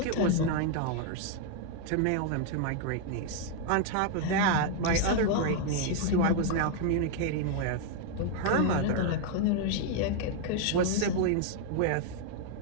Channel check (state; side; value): different; both; correlation 0.00